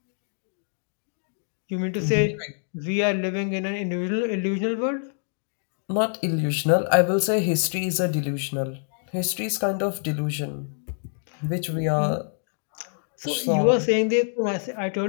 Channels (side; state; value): right; silent; digital silence